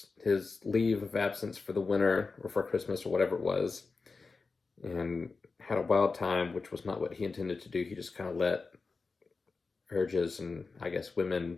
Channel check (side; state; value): right; quieter; 4.3 dB